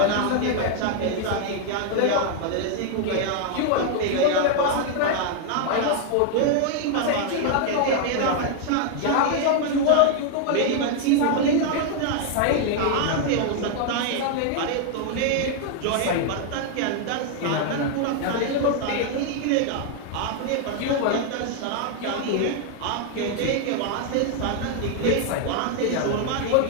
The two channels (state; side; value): different; both; correlation 0.00